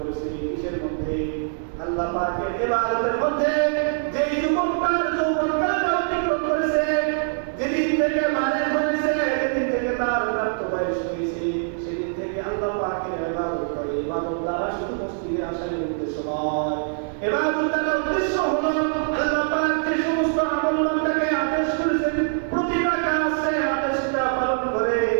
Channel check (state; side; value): silent; left; digital silence